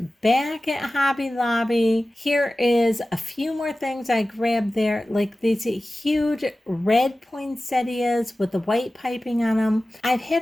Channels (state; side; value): normal; both; correlation 0.96